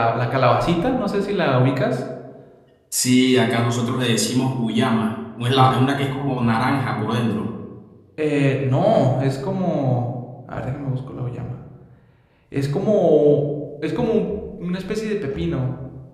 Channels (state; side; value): identical; both; correlation 1.00